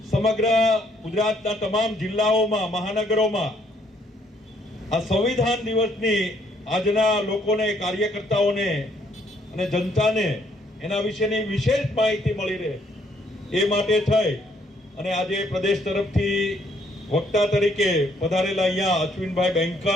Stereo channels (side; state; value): both; normal; correlation 0.68